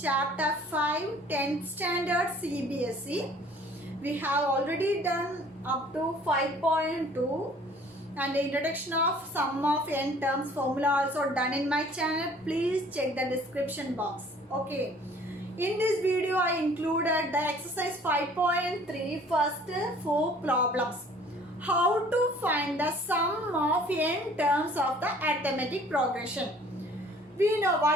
5 10th standard CBSE. We have already done up to 5.2 and the introduction of sum of n terms formula also done in my channel. Please check the description box. Okay. In this video, I included the exercise 5.3 first 4 problems. How to find the sum of n terms of the arithmetic progression. We know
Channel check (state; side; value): normal; both; correlation 0.53